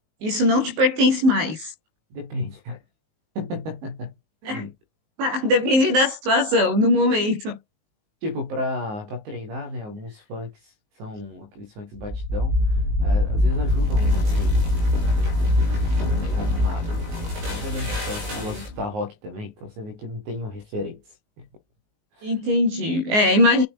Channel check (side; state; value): left; late; 19 ms